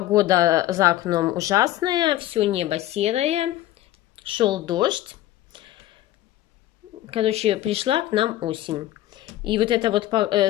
за окном ужасная, все небо серое, шел дождь. Короче, пришла к нам осень. И вот это вот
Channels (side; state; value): right; quieter; 14.4 dB